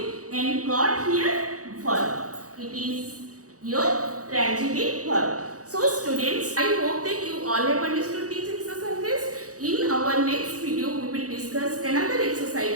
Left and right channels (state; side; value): late; left; 0.66 ms